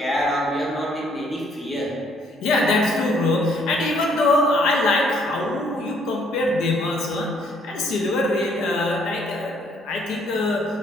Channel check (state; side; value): normal; both; correlation 0.66